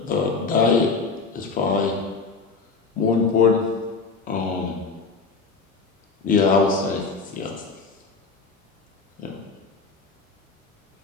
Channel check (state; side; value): quieter; right; 4.5 dB